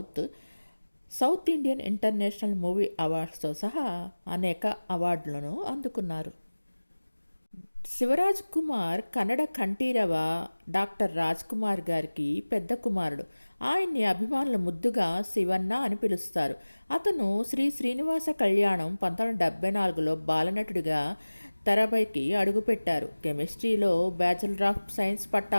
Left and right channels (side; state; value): both; inverted; correlation -1.00